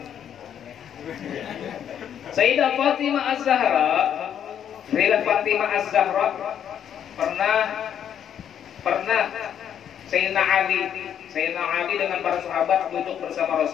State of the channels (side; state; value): right; quieter; 9.2 dB